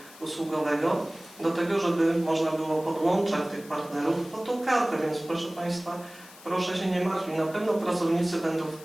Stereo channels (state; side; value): noise; left; hiss, 20 dB below the sound